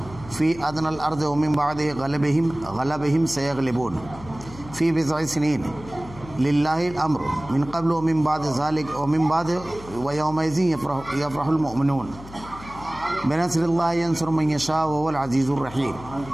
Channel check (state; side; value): noise; left; hum, 17 dB below the sound